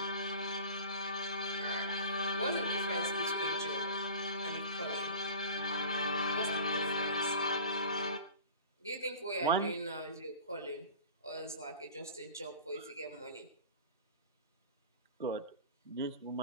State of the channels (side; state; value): both; inverted; correlation -0.37